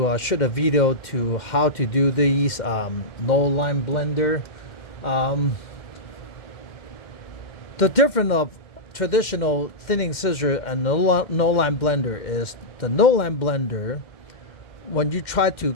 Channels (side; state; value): right; late; 2.1 ms